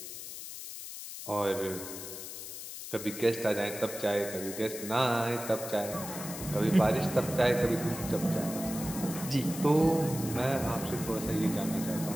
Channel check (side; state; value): left; noise; hiss, 9 dB below the sound